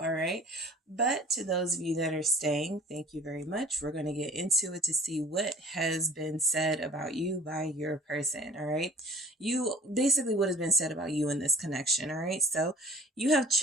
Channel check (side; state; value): both; normal; correlation 0.48